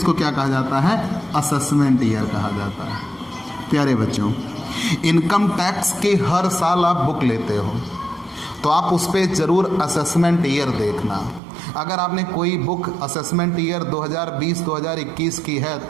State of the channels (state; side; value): drops out; left; at 11.4 s